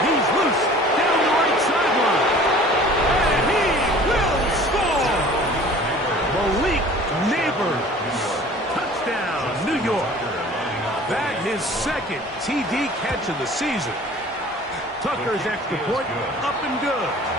loose down the right sideline. And he will score. Malik Neighbors. Touchdown, New York. That his 2nd TD catch of the season. Tucker's extra point up and good.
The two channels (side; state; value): both; normal; correlation 0.47